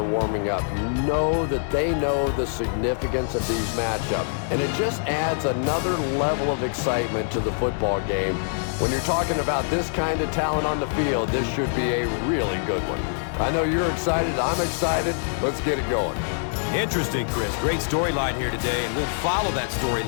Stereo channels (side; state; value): right; silent; digital silence